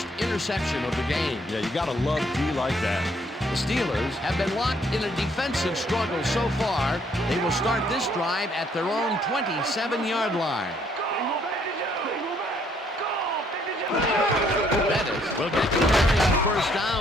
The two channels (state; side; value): normal; both; correlation 0.66